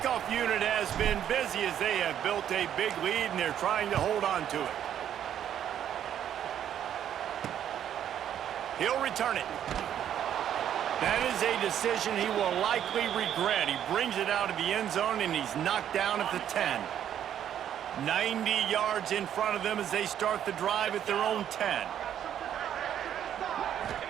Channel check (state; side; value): quieter; left; 10.0 dB